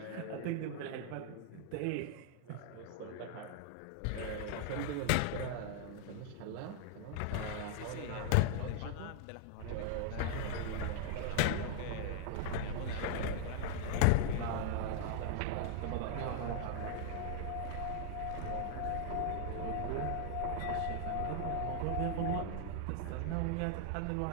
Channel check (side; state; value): both; different; correlation -0.01